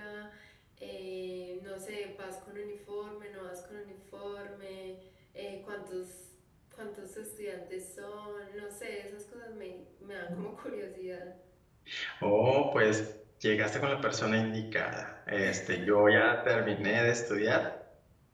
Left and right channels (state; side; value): identical; both; correlation 1.00